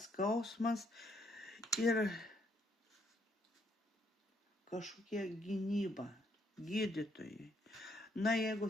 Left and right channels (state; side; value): normal; both; correlation 0.71